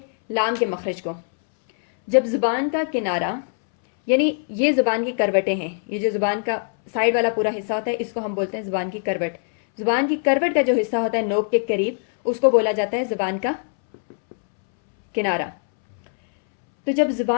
لام کے مخرج کو. جب زبان کا کنارہ، یعنی یہ زبان کی کروٹیں ہیں، یہ جو زبان کا سائڈ والا پورا حصہ ہوتا ہے اس کو ہم بولتے ہیں زبان کی کروٹ. زبان کی کروٹ کا جو حصہ ہوتا ہے نوک کے قریب اس کو بولا جاتا ہے زبان کا کنارہ. تو جب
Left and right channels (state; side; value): silent; right; 64 dB below the other